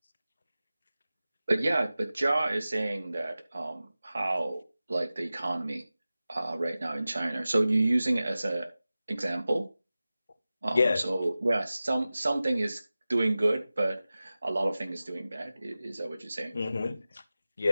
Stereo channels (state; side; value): inverted; both; correlation -0.95